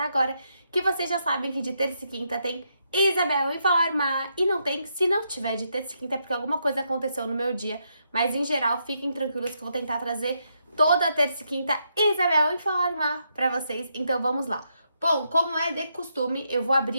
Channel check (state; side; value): inverted; both; correlation -0.79